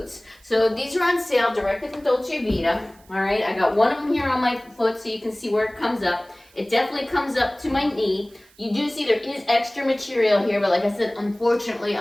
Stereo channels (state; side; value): noise; right; hiss, 29 dB below the sound